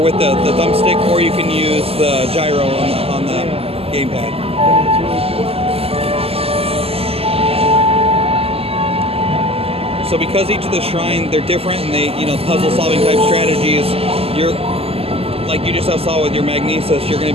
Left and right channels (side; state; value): left; late; 0.29 ms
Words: with the thumbstick, or you can use the gyro on the gamepad. So because each of the shrine, they're different and they, puzzle solving type strategies, you're, like you just saw with your magnesis, you're going to